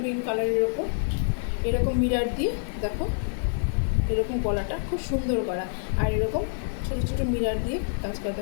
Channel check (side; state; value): right; silent; 58 dB below the other